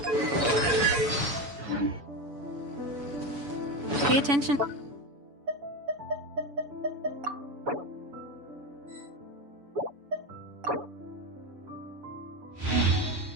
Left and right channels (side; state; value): left; late; 7.0 ms